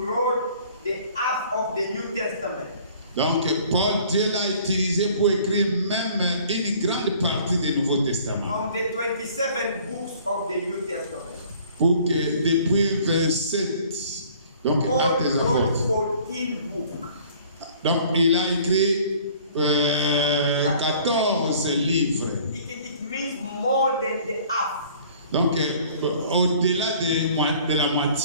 the half of the New Testament. Donc, Paul, Dieu l'a utilisé pour écrire même une grande partie du Nouveau Testament. On the 27 books of the New Testament. Pour que depuis 27, donc Paul Actes des wrote Apôtres. 14 books. Donc, il a écrit 14 livres. It means more than the half. Donc, au-delà de la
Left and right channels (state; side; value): inverted; both; correlation -0.53